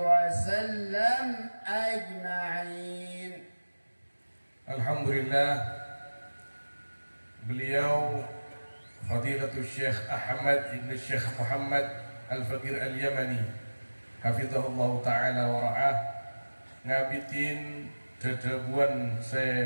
أجمعين. Alhamdulillah, beliau Fadilatul Syekh Ahmad ibn Syekh Muhammad Al-Faqir Al-Yamani hafizahullah ta'ala wa ra'ah ngabitin dedebuan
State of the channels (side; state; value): both; inverted; correlation -1.00